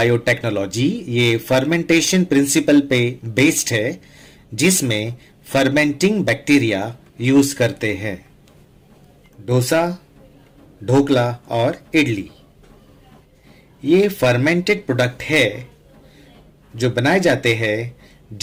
ये फर्मेंटेशन प्रिंसिपल पे बेस्ड है, जिसमें फर्मेंटिंग बैक्टीरिया यूज करते हैं। डोसा, ढोकला और इडली ये फर्मेंटेड प्रोडक्ट है जो बनाए जाते हैं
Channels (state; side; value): identical; both; correlation 1.00